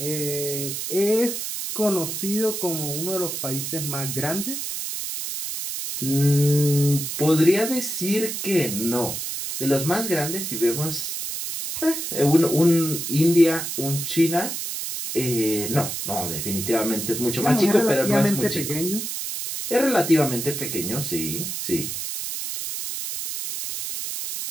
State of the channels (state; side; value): noise; right; hiss, 4 dB below the sound